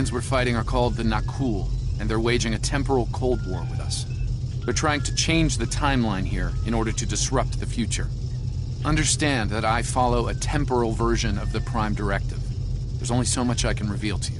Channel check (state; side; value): identical; both; correlation 1.00